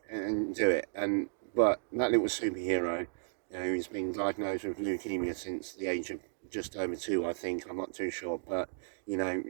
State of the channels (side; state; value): left; silent; digital silence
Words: and do it. And but that little superhero, who's been diagnosed with leukemia since the age of just over 2, I think. I'm not too sure, but you know,